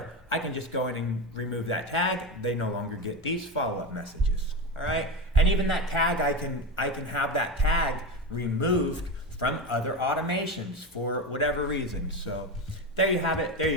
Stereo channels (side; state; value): both; normal; correlation 0.20